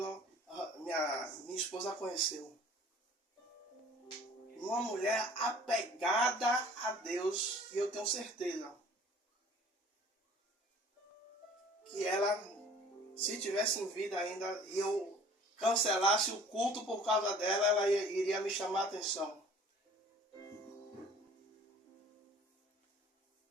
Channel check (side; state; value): both; normal; correlation 0.49